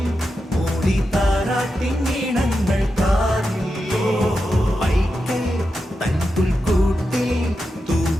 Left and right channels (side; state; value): both; normal; correlation 0.89